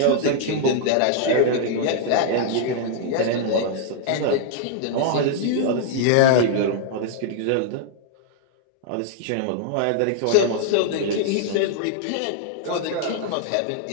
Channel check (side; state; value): both; different; correlation -0.01